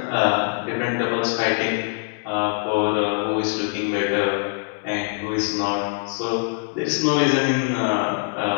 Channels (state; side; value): silent; right; 59 dB below the other